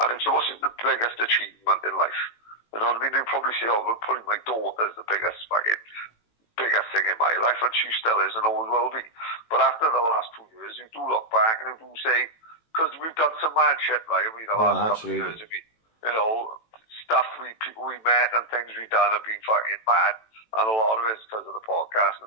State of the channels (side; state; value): right; late; 18 ms